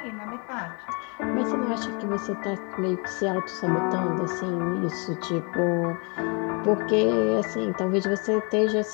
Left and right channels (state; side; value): quieter; right; 33.5 dB